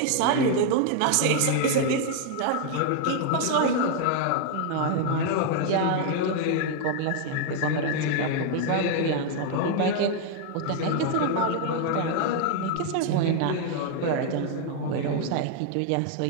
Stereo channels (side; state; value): both; different; correlation 0.00